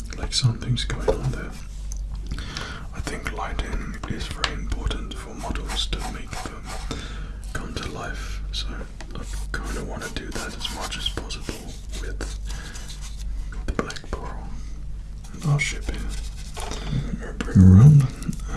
like something's going on there. I think lighting is very important for models to make them come to life, so I kind of want to do that as much as possible with the black pearl. And I'll ship it. Bring around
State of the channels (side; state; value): both; identical; correlation 1.00